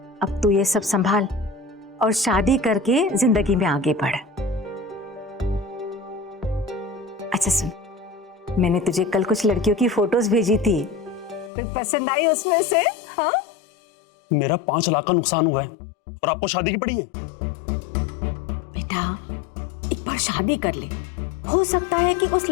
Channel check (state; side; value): drops out; right; at 11.5 s